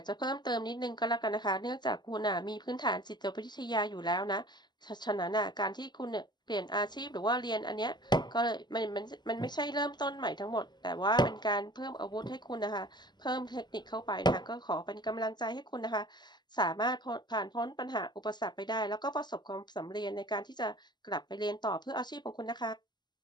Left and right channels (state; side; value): late; right; 0.21 ms